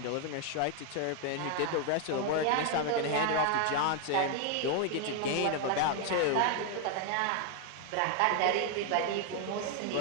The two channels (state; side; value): different; both; correlation 0.01